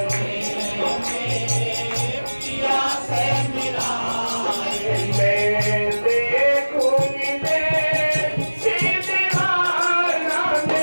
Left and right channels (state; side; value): inverted; both; correlation -1.00